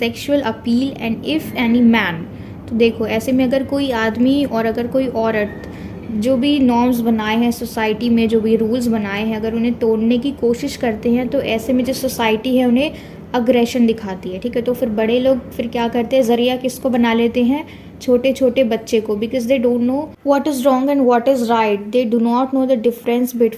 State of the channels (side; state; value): both; identical; correlation 1.00